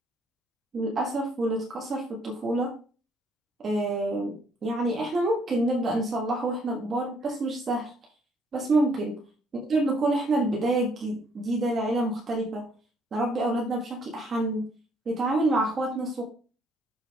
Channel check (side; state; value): both; normal; correlation 0.66